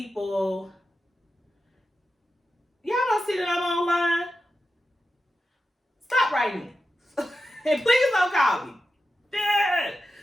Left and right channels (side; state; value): both; normal; correlation 0.90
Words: y'all don't see that I'm online? Stop writing me. And please don't call me.